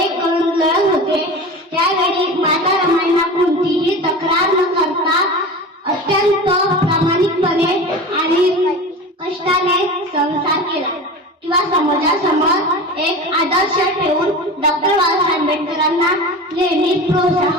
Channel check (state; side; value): normal; both; correlation 0.32